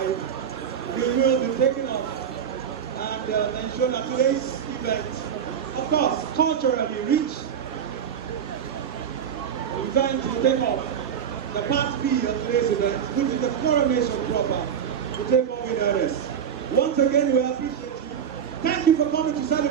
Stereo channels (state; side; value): quieter; left; 8.1 dB